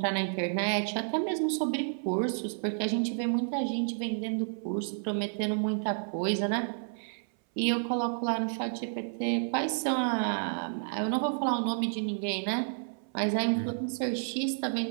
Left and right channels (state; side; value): silent; left; 57 dB below the other